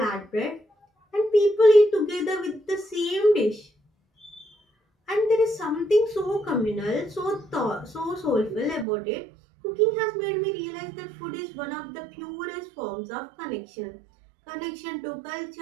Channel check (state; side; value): drops out; left; at 8.8 s